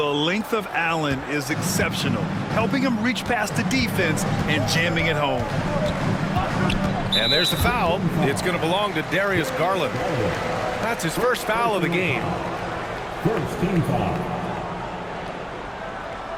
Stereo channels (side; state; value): both; identical; correlation 1.00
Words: length of Allen is exceptional, helping him reach past the defense and jamming it home. And there's the foul. It's going to belong to Darius Garland. That's his first foul of the game. First team foul.